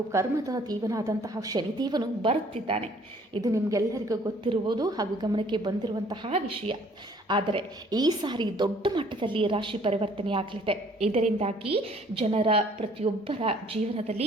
ಕರ್ಮದ ದೇವನಾದಂತಹ ಶನಿದೇವನು ಬರುತ್ತಿದ್ದಾನೆ. ಇದು ನಿಮಗೆಲ್ಲರಿಗೂ ಗೊತ್ತಿರುವುದು ಹಾಗೂ ಗಮನಕ್ಕೆ ಬಂದಿರುವಂತಹ ವಿಷಯ. ಆದರೆ ಈ ಸಾರಿ ದೊಡ್ಡ ಮಟ್ಟದಲ್ಲಿ ರಾಶಿ ಪರಿವರ್ತನೆ ಆಗಲಿದೆ. ಇದರಿಂದಾಗಿ ಜನರ ಪ್ರತಿಯೊಬ್ಬರ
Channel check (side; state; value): both; normal; correlation 0.58